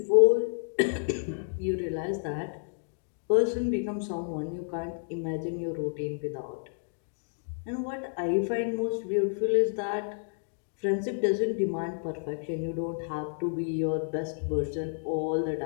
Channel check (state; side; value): silent; right; digital silence